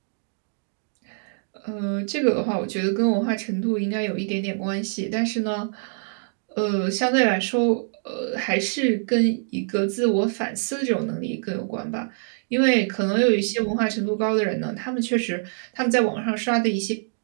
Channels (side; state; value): left; silent; digital silence